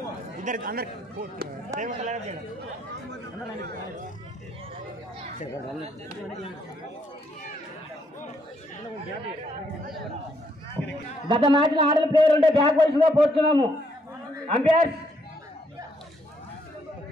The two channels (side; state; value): both; normal; correlation 0.71